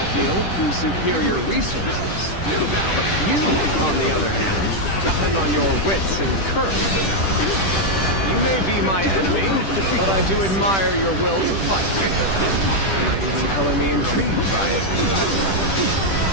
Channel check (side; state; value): right; late; 10 ms